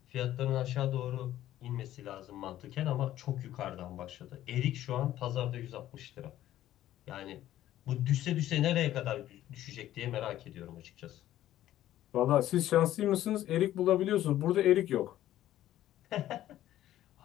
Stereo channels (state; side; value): quieter; right; 13.2 dB